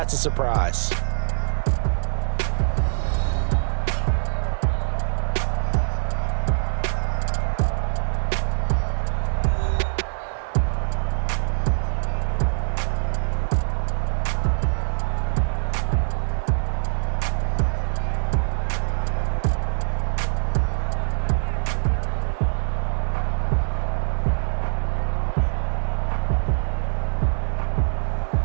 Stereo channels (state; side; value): silent; left; digital silence